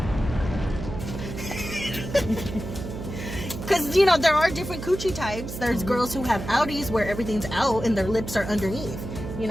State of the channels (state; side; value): noise; right; hum, 8 dB below the sound